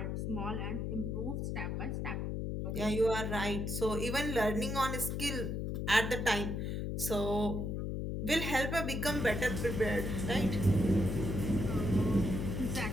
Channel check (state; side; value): noise; left; hum, 2 dB below the sound